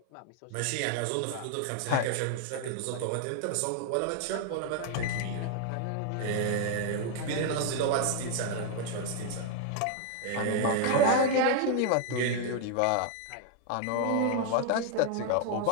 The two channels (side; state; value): both; different; correlation 0.00